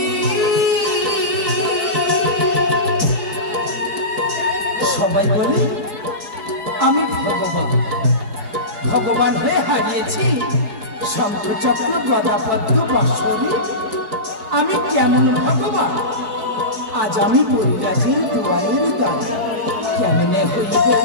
সবাই বলে আমি ভগবান, ভগবান হয়ে হারিয়েছি শঙ্খচক্র গদাপদ্ম বাঁশরি। আমি কেমন ভগবান, আজ আমি পরিরাজের দুয়ারের দ্বারে কেমনে হইব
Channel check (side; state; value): left; late; 4.6 ms